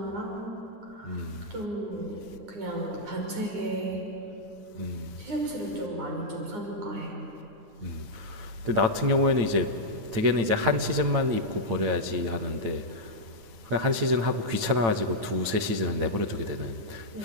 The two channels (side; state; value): left; late; 9.0 ms